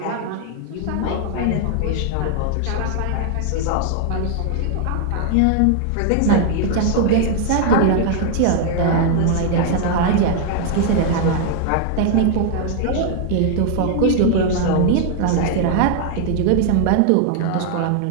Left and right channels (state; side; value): different; both; correlation 0.00